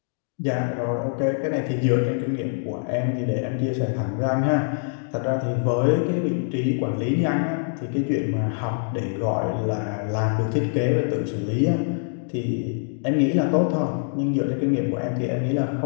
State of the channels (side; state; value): right; silent; digital silence